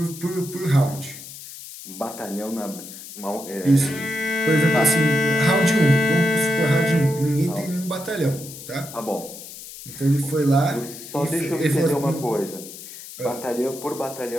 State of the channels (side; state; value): left; noise; hiss, 14 dB below the sound